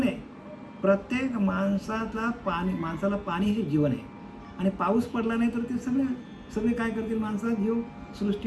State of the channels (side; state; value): both; identical; correlation 1.00